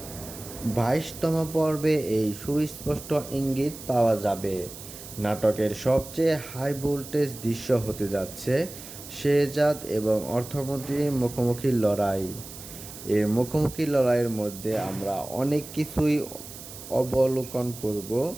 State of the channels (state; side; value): noise; right; hiss, 14 dB below the sound